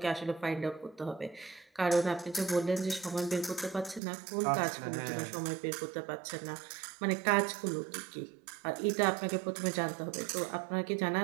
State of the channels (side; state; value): left; drops out; at 4.0 s